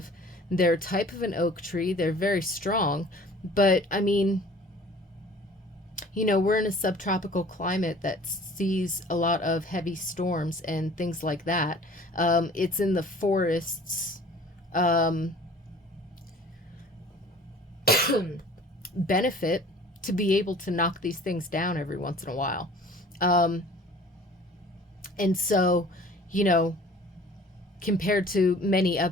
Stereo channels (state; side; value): normal; both; correlation 0.48